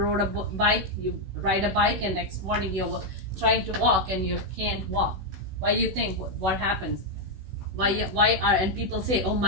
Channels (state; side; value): late; left; 16 ms